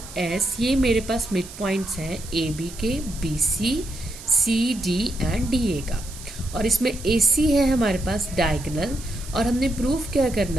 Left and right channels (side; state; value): right; noise; hiss, 15 dB below the sound